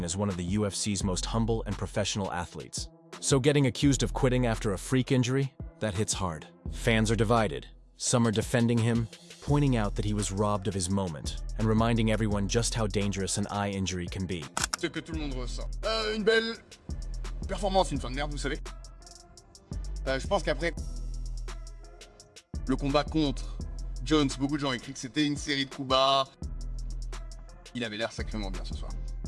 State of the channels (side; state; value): both; identical; correlation 1.00